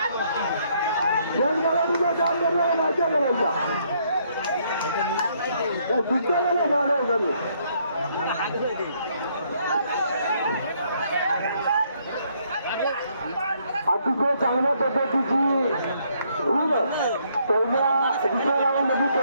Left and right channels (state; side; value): inverted; both; correlation -0.70